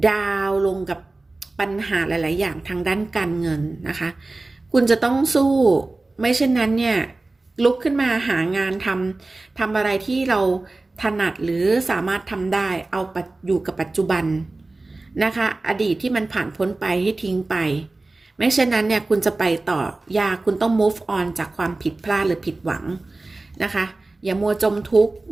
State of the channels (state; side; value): quieter; left; 3.2 dB